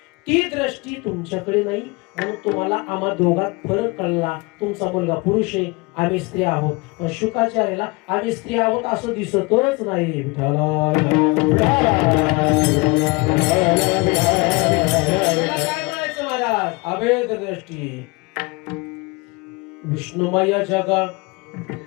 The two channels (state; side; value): quieter; right; 26.7 dB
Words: ती दृष्टी तुमच्याकडे नाही. म्हणून तुम्हाला आम्हा दोघात फरक कळला. तुमचा मुलगा पुरुष आहे, आम्ही स्त्री आहोत, पण शुकाचार्याला आम्ही स्त्री आहोत असं दिसतच नाही. काय म्हणायचं महाराज, अभेद दृष्टी. विष्णुमय जग